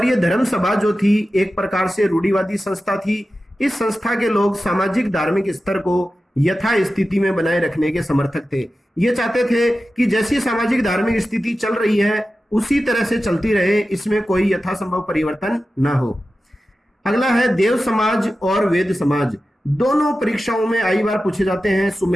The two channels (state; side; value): normal; both; correlation 0.93